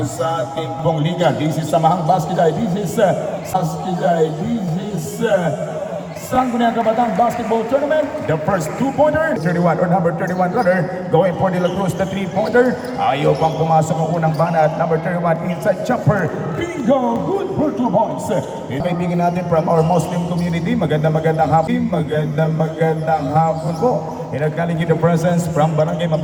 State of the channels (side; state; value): both; identical; correlation 1.00